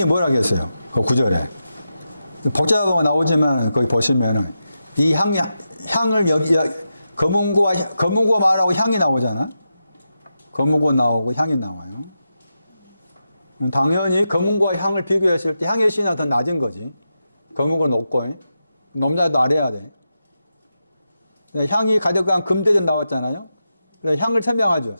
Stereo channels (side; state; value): both; inverted; correlation -0.88